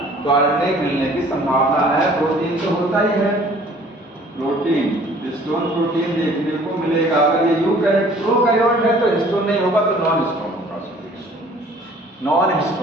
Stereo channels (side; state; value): both; normal; correlation 0.53